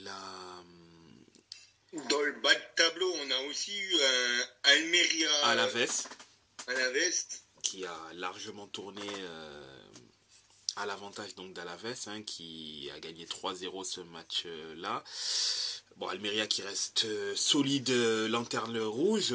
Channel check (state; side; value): identical; both; correlation 1.00